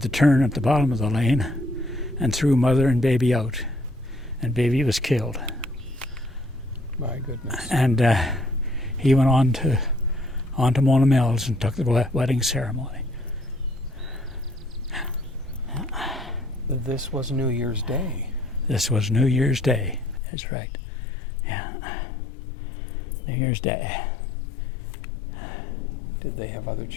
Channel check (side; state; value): right; drops out; at 20.2 s